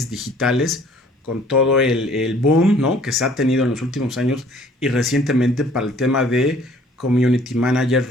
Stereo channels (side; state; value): both; normal; correlation 0.56